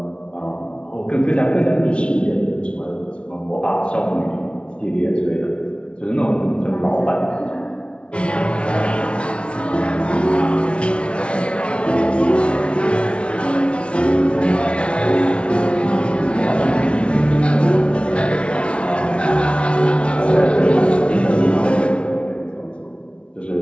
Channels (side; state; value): right; late; 0.059 ms